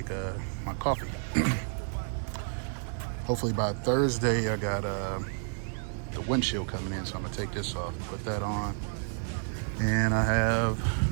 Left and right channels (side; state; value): left; silent; 57 dB below the other